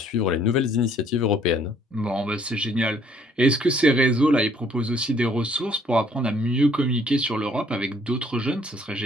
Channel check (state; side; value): normal; both; correlation 0.63